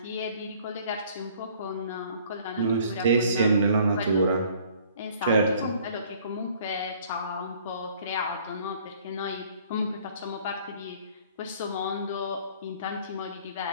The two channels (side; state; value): both; inverted; correlation -0.56